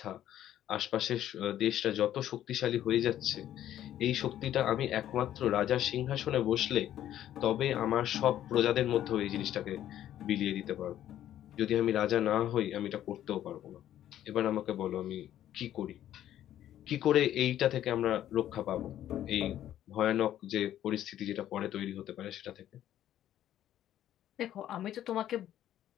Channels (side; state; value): right; quieter; 11.9 dB